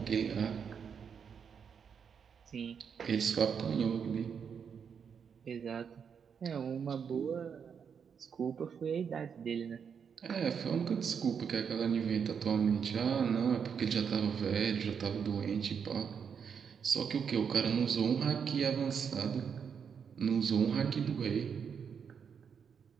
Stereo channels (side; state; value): left; quieter; 6.9 dB